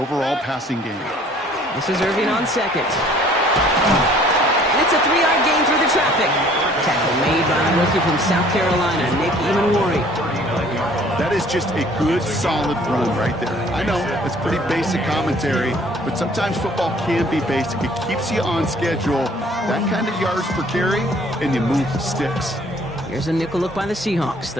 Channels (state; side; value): normal; both; correlation 0.55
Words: passing game. This is Irving on second. And it's a 3-yard gain through the traffic. Tackle made by the rookie from South Carolina, Nick Emanwari. That is just a good, solid run right there. I know, it's pretty basic commentary, but sometimes football can be basic. It keeps you on schedule, that kind of yards per carry, and you move the sticks. Here's a nickel look by the Seahawks.